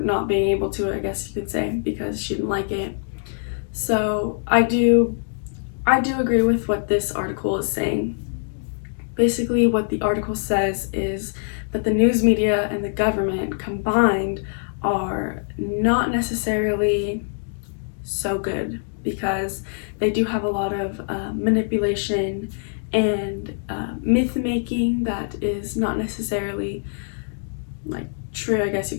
not being able to, I guess you could say, because she didn't like it. So I do agree with what this article is saying. Basically what the article says is that the news media and the government combined are not necessarily so good, because they do have a lot of manipulation and myth making that is not necessarily like true, I guess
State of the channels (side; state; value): right; silent; digital silence